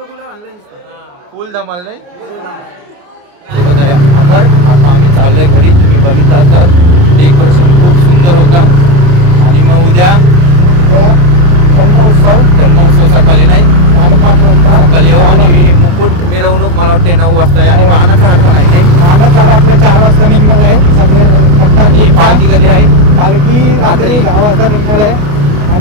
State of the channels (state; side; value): late; left; 28 ms